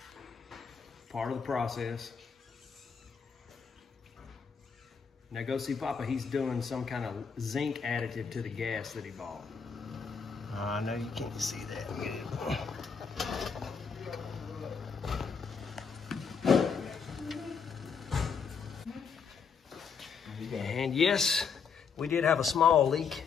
Part of the process. Now go see Papa, he's doing some kind of zinc additive to the gas that he bought. I know you can't see that. And yes, we did have a small leak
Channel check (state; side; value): quieter; right; 6.0 dB